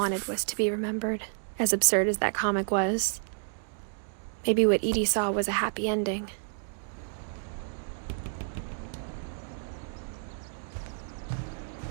was to be remembered, as absurd as that comic was. Maybe what Edie saw was a happy ending.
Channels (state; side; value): silent; left; digital silence